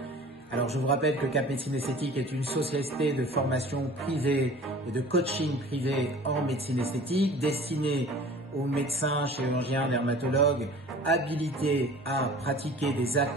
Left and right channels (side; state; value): both; normal; correlation 0.44